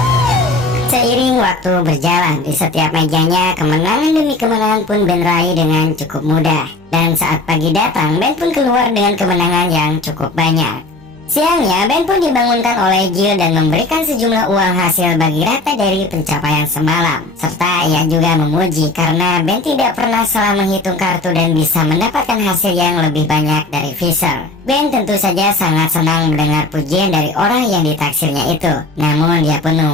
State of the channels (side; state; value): right; quieter; 3.1 dB